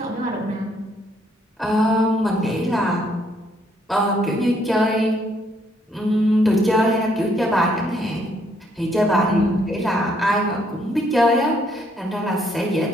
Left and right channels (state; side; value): normal; both; correlation 0.70